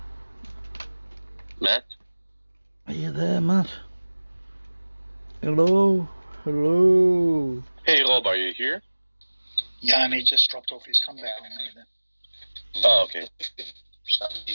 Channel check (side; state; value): both; inverted; correlation -1.00